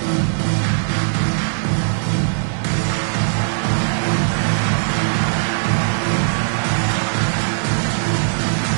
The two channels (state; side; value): silent; left; digital silence